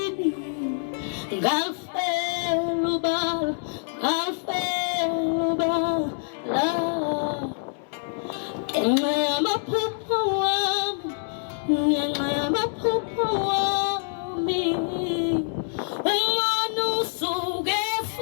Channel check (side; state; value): right; silent; 61 dB below the other